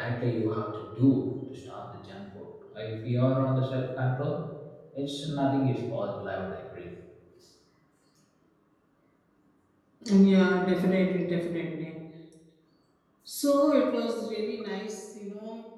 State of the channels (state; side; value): identical; both; correlation 1.00